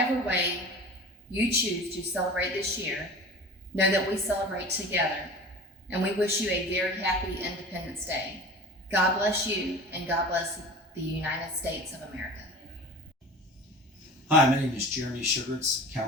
way you choose to celebrate this year, know that we celebrate together, and we wish you a very happy Independence Day. God bless you, and God bless the United States of America. Hi, my name is Jeremy Sugarts,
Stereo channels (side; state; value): both; normal; correlation 0.37